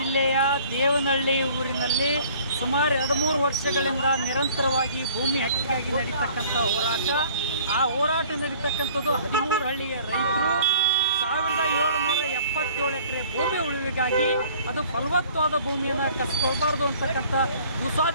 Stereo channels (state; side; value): inverted; both; correlation -0.52